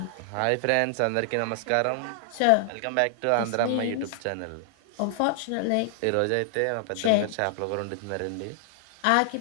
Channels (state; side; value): different; both; correlation 0.00